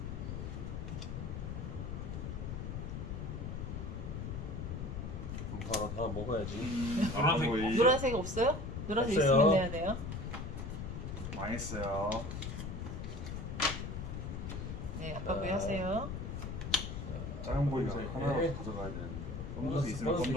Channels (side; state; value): left; noise; rumble, 5 dB below the sound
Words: 바로 하나 먹어야지. 노란색 거의 노란색 없어요? 노란색 없어요. 있으면 내야 돼요. 망했어요. 네, 아빠 자. 뭐 하세요? 작은 보이가 검은색. 하나라도 가져가야 되는데. 검정색 있으면 검은색